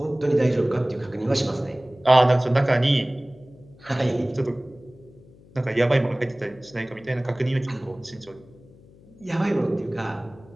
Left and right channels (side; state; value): left; noise; hum, 25 dB below the sound